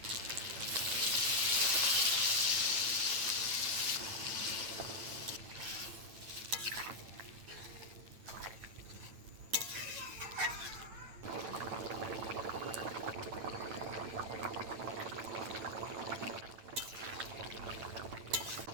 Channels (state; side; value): late; left; 8.9 ms